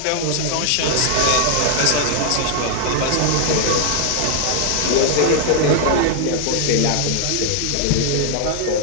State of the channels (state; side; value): different; both; correlation 0.00